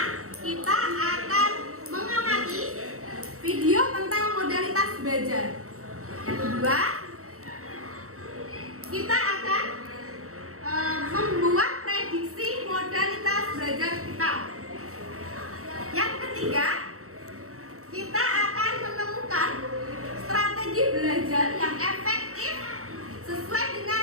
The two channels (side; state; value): left; late; 0.64 ms